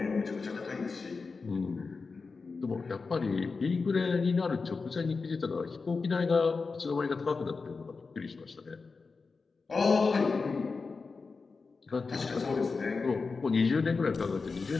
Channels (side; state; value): right; quieter; 4.4 dB